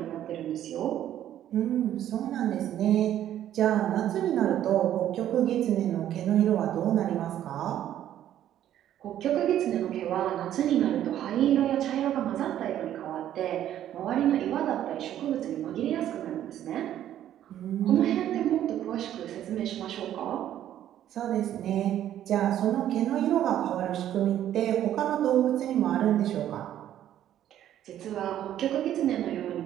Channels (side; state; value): left; quieter; 11.5 dB